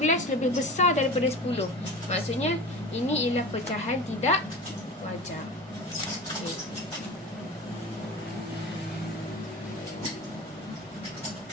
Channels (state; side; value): normal; both; correlation 0.33